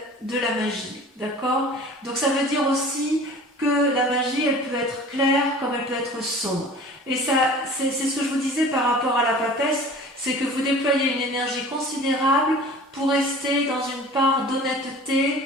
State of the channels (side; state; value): both; normal; correlation 0.43